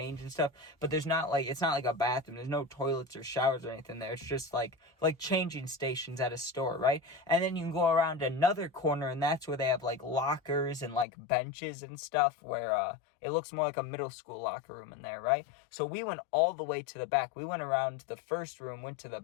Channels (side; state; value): right; drops out; at 11.1 s